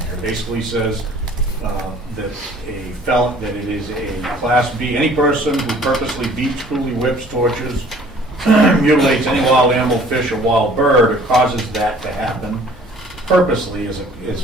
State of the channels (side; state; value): both; normal; correlation 0.53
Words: It basically says that it is a Class B, any person who purposely beats, cruelly whips, tortures, mutilates any wild animal, fish, or wild bird, or causes that to happen purposely